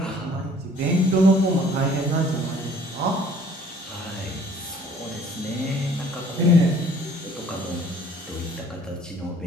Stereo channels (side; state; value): both; normal; correlation 0.55